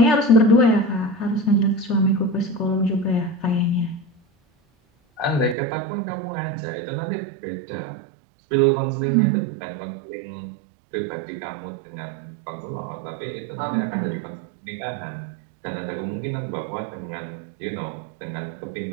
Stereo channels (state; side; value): drops out; left; at 5.6 s